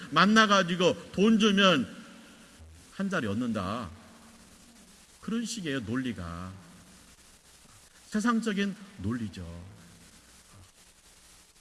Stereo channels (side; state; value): both; identical; correlation 1.00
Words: 만나가지고 돈 주면 한 자리 얻는다. 그런 식의 논리가 세상적인 논리죠.